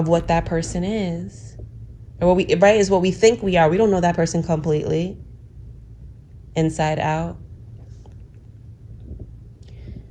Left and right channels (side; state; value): both; identical; correlation 1.00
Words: what that person is. Or is what we think we are. We don't know that person completely, inside out.